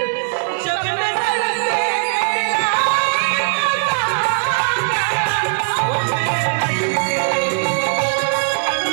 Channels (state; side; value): silent; left; digital silence